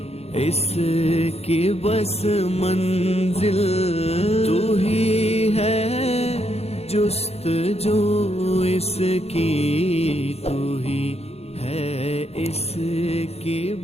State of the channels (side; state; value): right; late; 0.30 ms